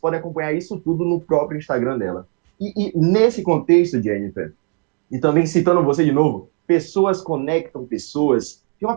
podem acompanhar isso tudo no próprio Instagram dela. E nesse contexto, Jennifer, e também citando você de novo, pessoas conectam pessoas. Tem uma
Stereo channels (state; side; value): quieter; left; 32.9 dB